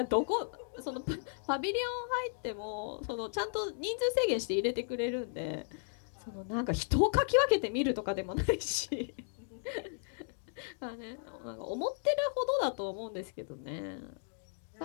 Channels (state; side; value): silent; right; digital silence